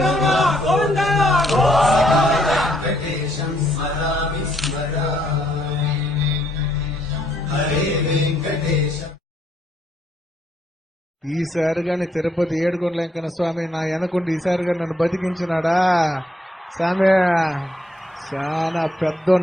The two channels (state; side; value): normal; both; correlation 0.71